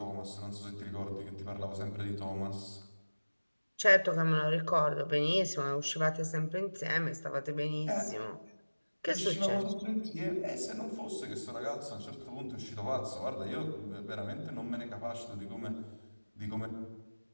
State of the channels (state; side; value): inverted; both; correlation -1.00